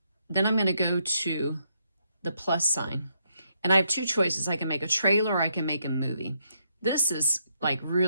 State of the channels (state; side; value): inverted; both; correlation -0.77